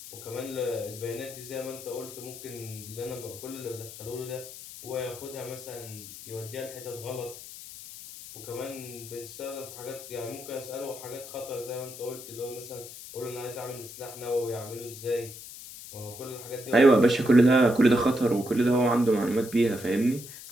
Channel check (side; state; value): left; noise; hiss, 13 dB below the sound